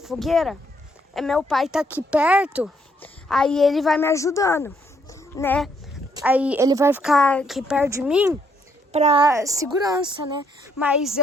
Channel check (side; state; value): both; normal; correlation 0.71